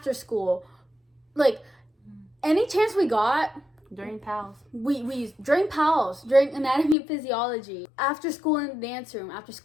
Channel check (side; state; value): right; drops out; at 7.0 s